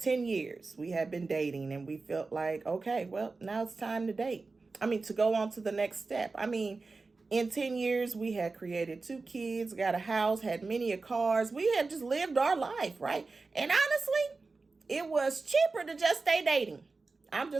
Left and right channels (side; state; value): left; quieter; 3.9 dB